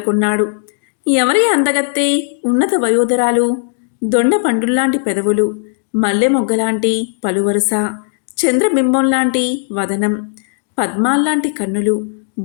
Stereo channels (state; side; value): silent; right; digital silence